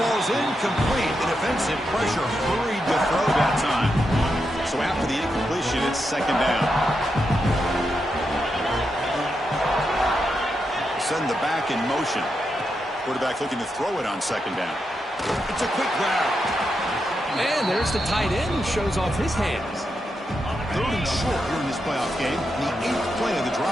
incomplete. The defensive pressure hurried to throw that time. So after the incompletion, it's second down. Send the back in motion. Quarterback looking to throw it on second down. It's a quick grab. And there's the tight end who shows off his hands. 3rd and short here in this playoff game. The 8th play of the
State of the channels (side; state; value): both; normal; correlation 0.85